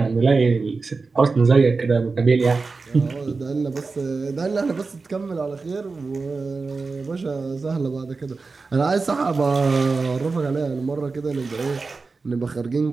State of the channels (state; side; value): quieter; left; 4.2 dB